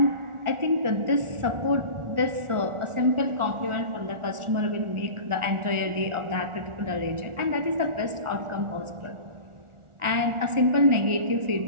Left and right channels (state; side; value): late; left; 1.4 ms